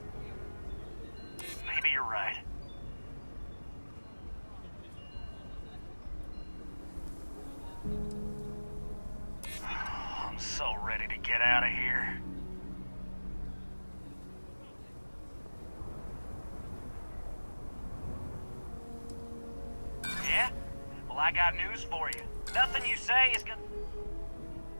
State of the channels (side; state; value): both; inverted; correlation -1.00